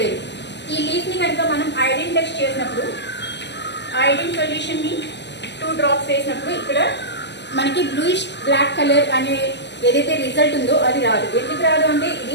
ఈ లీఫ్ని కనుక మనం ఐరన్ టెస్ట్ చేసినప్పుడు ఐరన్ సొల్యూషన్ని 2 drops వేసినప్పుడు ఇక్కడ మనకి బ్లూయిష్ బ్లాక్ కలర్ అనే ఏదైతే రిజల్ట్ ఉందో అది రాదు. ఎందుకు రాదు అంటే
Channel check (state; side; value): late; right; 0.51 ms